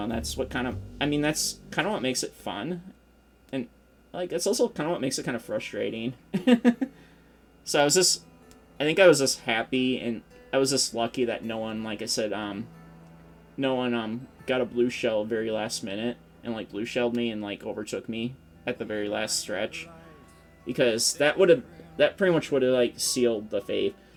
and that's what that's kind of what makes it fun, and, like, it's also kind of what makes it kind of frustrating. So I think I was just happy, and I was just lucky that no one, like I said, no one got a blue shell very last minute and, like, blue shelled me and, like, overtook me at the very last stretch, because that pretty much would have, like, sealed the fate.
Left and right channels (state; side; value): identical; both; correlation 1.00